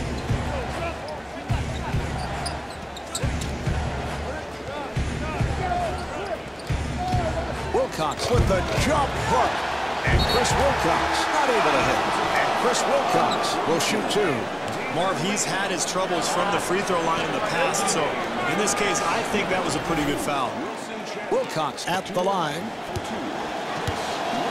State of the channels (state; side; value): identical; both; correlation 1.00